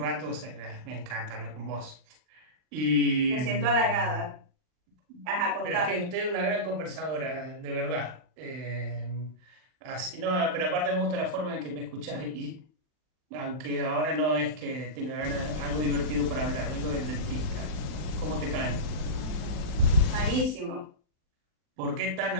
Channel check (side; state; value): left; late; 39 ms